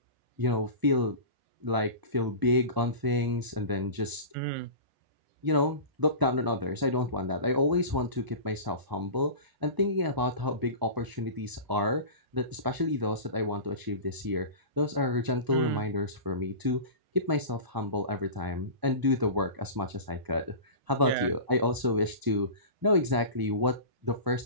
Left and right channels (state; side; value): late; left; 1.0 ms